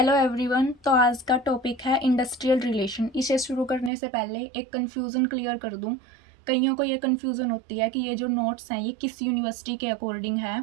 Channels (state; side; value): drops out; left; at 3.9 s